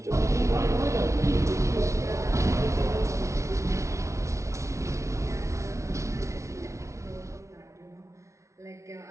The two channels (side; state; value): left; late; 0.14 ms